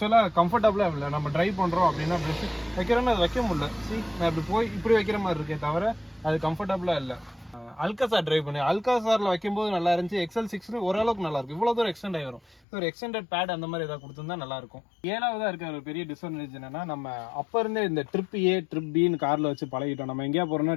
கம்ஃபர்டபுளாக இல்லை. நம்ம ட்ரைவ் பண்ணுறோம் அப்படின்னா ப்ரெஷ் வைக்கிறோன்னு அது வைக்க முடியல. நான் இப்படி வைக்கிற மாதிரி இருக்கே தவிர அது கம்ஃபர்டபுளாக இல்லை. அல்காசார் ட்ரைவ் பண்ணி அல்காசாரில் வைக்கும்போது நல்லா இருந்துச்சு. XL6 ஓரளவுக்கு நல்லா இருக்கும். இவ்வளோ தூரம் எக்ஸ்டெண்ட் ஆகி வரும். ஒரு எக்ஸ்டெண்டட் பேட் அந்த மாதிரி ஏதாவது கொடுத்துருந்தா நல்லாயிருக்கும். 7வதாக இருக்க ஒரு பெரிய டிஸ்அட்வான்டேஜ் என்னன்னா, நம்ம அப்போ இருந்தே இந்த ட்ரிப் ஏ ட்ரிப் பின்னு காரில் வச்சு பழகிட்டோம். நம்ம எங்கேயா போகிறோம்னா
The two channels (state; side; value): drops out; right; at 12.6 s